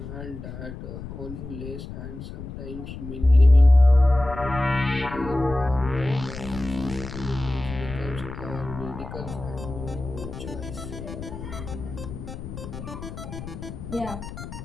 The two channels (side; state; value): left; noise; rumble, 10 dB below the sound